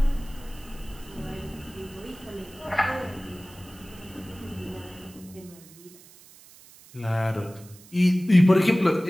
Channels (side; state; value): right; noise; hiss, 22 dB below the sound